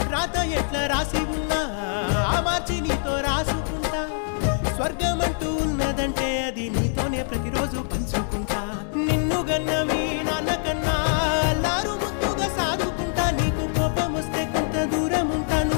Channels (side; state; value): right; silent; digital silence